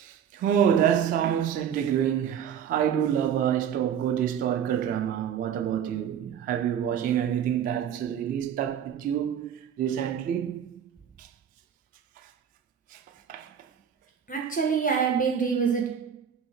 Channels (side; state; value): left; quieter; 8.6 dB